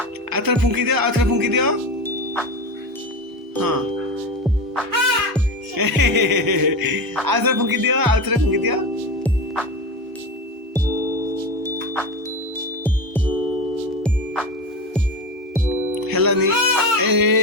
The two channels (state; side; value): normal; both; correlation 0.23